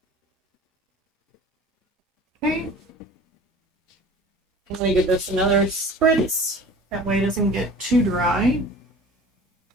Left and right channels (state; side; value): normal; both; correlation 0.42